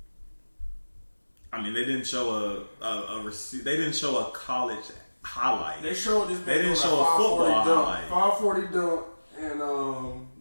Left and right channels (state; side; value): inverted; both; correlation -1.00